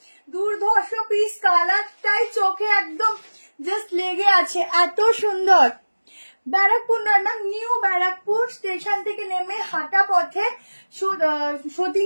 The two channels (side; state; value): both; inverted; correlation -1.00